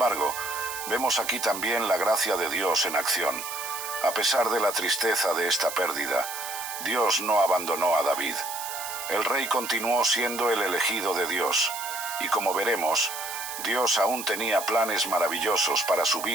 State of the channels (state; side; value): noise; right; hiss, 8 dB below the sound